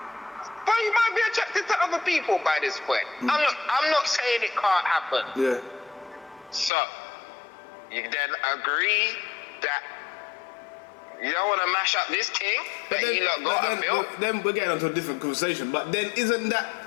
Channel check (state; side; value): drops out; right; at 6.7 s